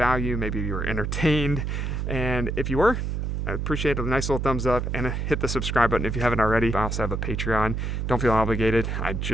Maybe you were entertained. And if you were, I appreciate a nice little thumbs up, and hit the subscribe button if you haven't already. I also have a Patreon. Don't feel obligated. I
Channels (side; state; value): right; noise; hum, 2 dB below the sound